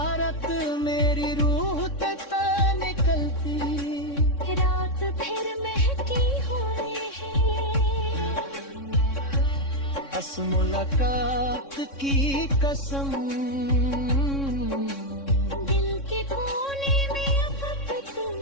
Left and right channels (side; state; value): right; late; 3.6 ms